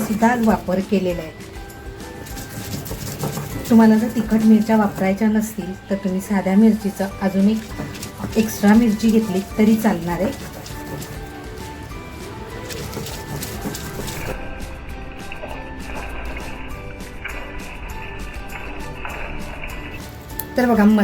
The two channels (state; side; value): identical; both; correlation 1.00